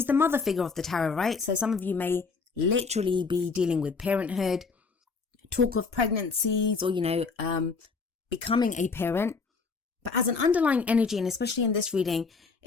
the mother figure of the tarot, right? So some of you may literally be dealing with parenthood, talk of pregnancies, or, becoming a parent. But as an underlying energy, and especially in this reading,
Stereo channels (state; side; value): quieter; right; 4.7 dB